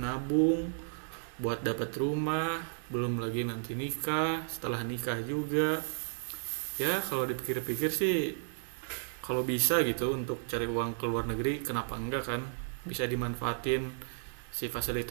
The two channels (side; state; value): left; silent; digital silence